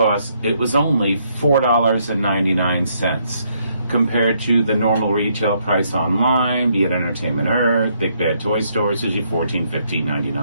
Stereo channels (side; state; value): both; inverted; correlation -0.72